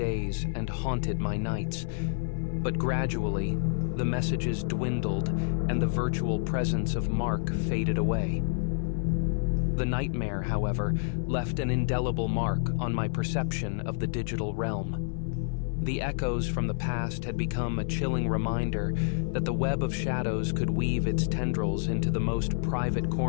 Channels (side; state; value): right; silent; 58 dB below the other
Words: and haunted my nights. But gradually, the messages dwindled and the virtual presence of Mark faded away. The nightmare, however, left an indelible mark on my perception of the digital realm. The echoes from the past had become a chilling reminder that the web of shadows could weave its tendrils into the most private